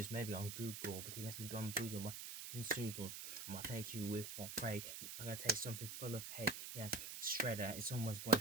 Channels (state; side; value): noise; right; hiss, 7 dB below the sound